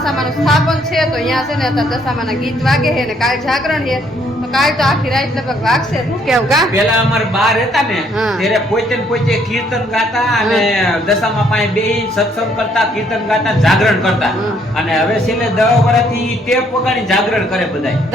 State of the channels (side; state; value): both; normal; correlation 0.67